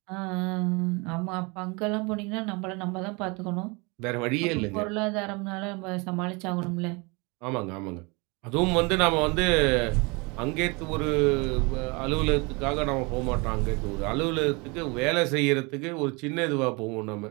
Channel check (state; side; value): quieter; left; 28.5 dB